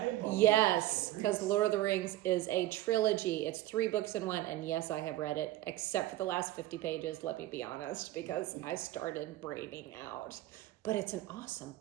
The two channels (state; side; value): quieter; left; 15.4 dB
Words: Yes, because Lord of the Rings is a trilogy. It's 3 books in one, and yes, I have read it, except for the last 50 pages, let me be honest, because I started braining out. But it's an awesome